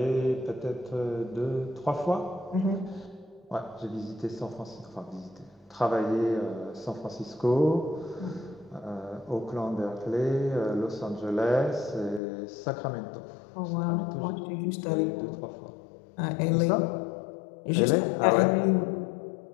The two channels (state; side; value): drops out; right; at 12.2 s